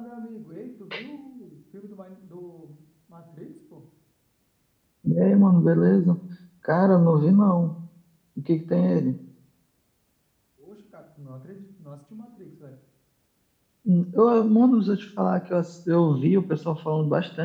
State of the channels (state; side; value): identical; both; correlation 1.00